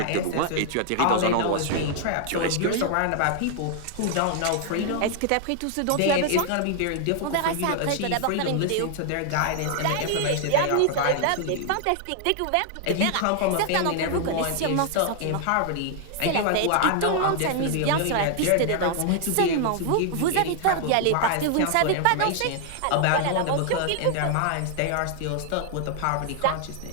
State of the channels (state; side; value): different; both; correlation 0.00